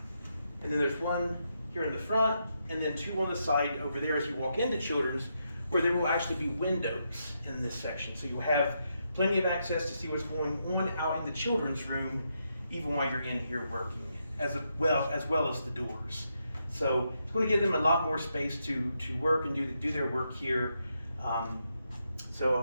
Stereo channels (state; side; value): inverted; both; correlation -0.81